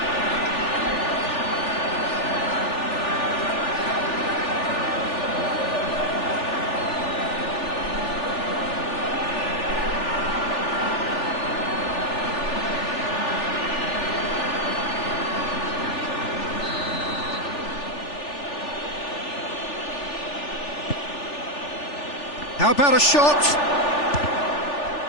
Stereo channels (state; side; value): late; right; 3.4 ms